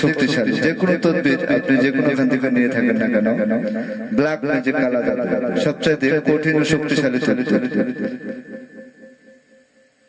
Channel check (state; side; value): identical; both; correlation 1.00